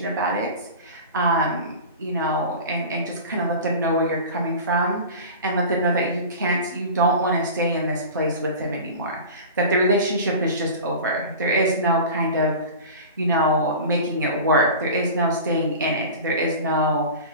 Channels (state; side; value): inverted; both; correlation -0.34